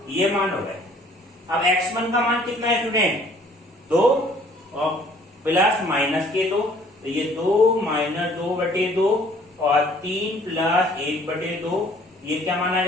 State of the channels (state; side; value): normal; both; correlation 0.57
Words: ये मान हो गए। अब x1 का मान कितना है स्टूडेंट 2 और प्लस माइनस के 2, तो ये 2 माइनस 2/2 और 3 प्लस 1/2, ये क्या माना